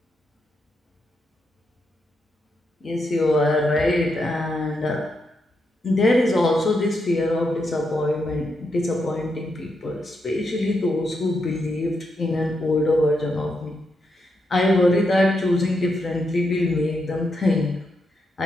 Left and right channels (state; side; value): normal; both; correlation 0.82